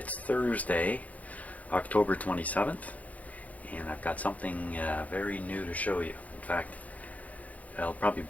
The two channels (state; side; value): late; right; 0.072 ms